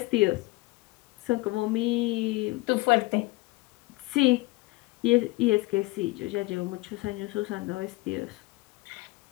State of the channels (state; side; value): quieter; right; 22.0 dB